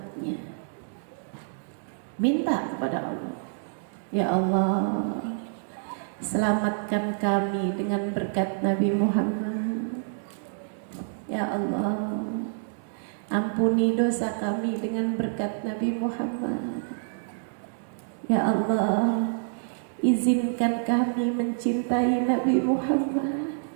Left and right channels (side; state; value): left; silent; digital silence